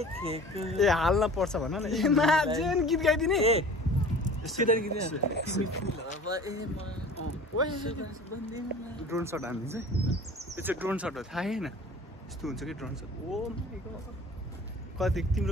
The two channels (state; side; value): normal; both; correlation 0.42